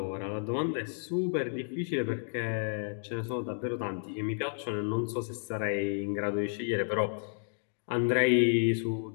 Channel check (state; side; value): silent; right; digital silence